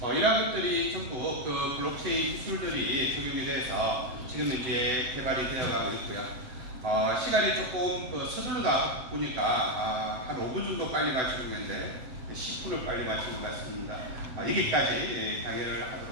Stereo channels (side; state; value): left; late; 7.9 ms